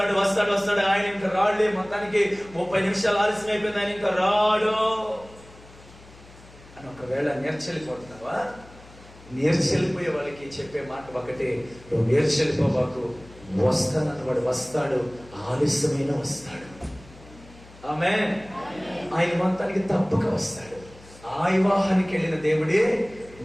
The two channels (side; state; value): left; noise; hum, 22 dB below the sound